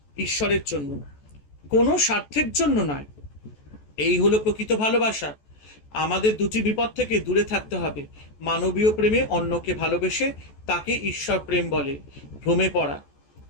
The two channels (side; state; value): right; late; 14 ms